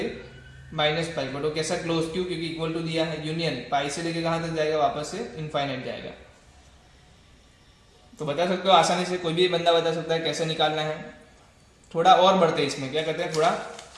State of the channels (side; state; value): both; identical; correlation 1.00